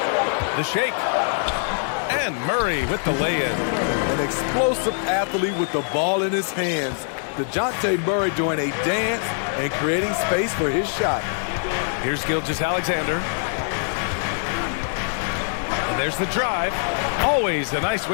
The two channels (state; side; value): silent; right; digital silence